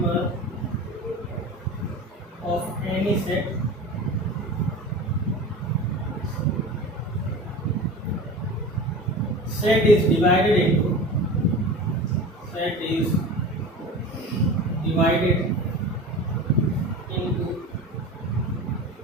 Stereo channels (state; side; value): normal; both; correlation 0.33